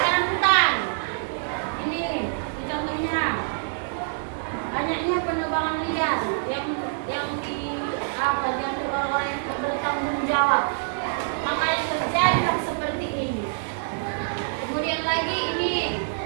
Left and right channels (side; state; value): left; silent; digital silence